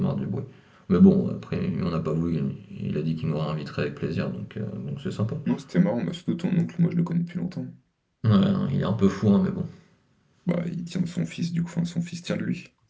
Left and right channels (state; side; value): identical; both; correlation 1.00